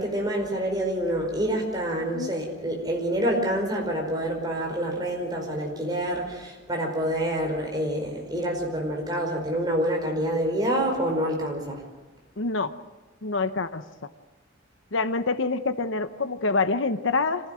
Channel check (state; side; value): normal; both; correlation 0.15